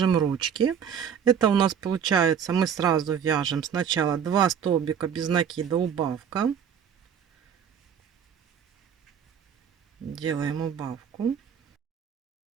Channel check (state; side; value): quieter; left; 7.9 dB